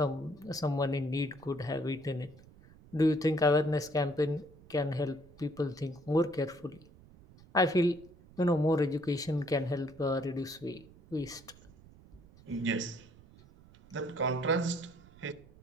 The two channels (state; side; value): noise; right; rumble, 23 dB below the sound